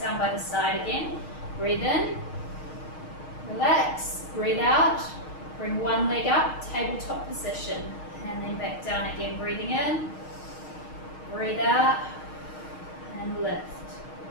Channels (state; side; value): late; right; 6.4 ms